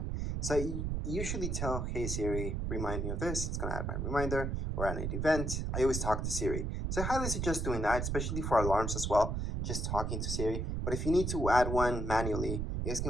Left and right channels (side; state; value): right; noise; rumble, 1 dB below the sound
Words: So I usually tell, hey Siri, remind me of this. It's gonna add my reminder, or add an event. I always talk to Siri. So I highly suggest doing that, especially for alarms as well, just talking to Siri. But if you need to add one manually, you guys can